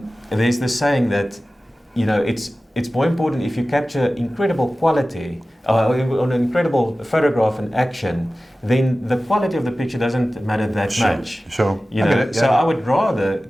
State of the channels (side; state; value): both; normal; correlation 0.96